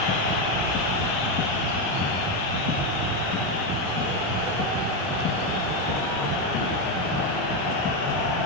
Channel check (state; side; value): normal; both; correlation 0.08